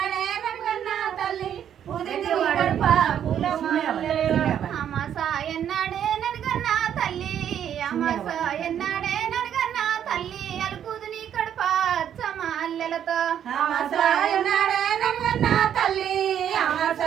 నన్గన్న తల్లి ఉదితి గడప అమాస ఎన్నడే నన్గన్న తల్లి అమాస ఎన్నడే నన్గన్న తల్లి అలుకుదుని కడప చమల్లెలతో అమాస ఎన్నడే నన్గన్న తల్లి అమాస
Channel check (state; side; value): quieter; left; 9.5 dB